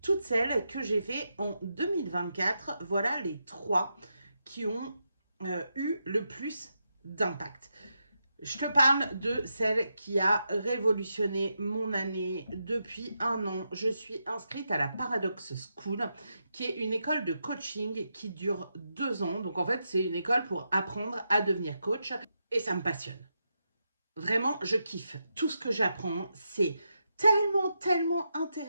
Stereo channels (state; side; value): inverted; both; correlation -0.85